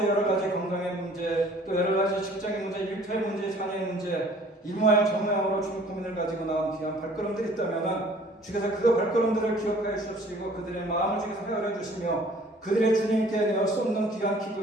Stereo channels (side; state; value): both; normal; correlation 0.53